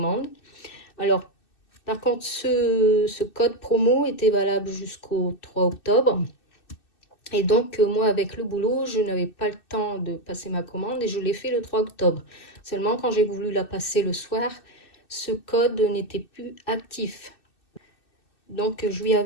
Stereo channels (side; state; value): right; late; 2.6 ms